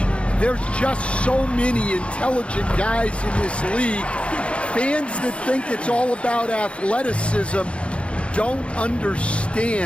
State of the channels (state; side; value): late; right; 0.060 ms